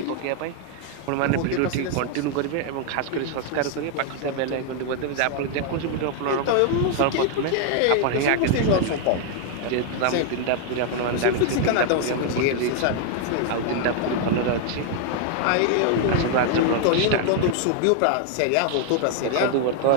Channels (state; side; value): different; both; correlation 0.00